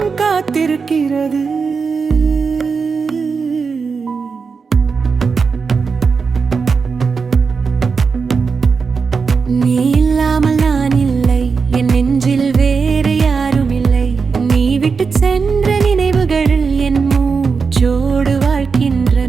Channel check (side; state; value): left; quieter; 5.2 dB